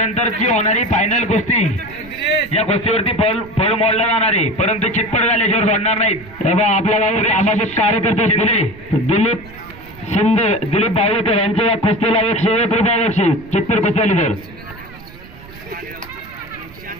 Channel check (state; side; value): noise; right; rumble, 19 dB below the sound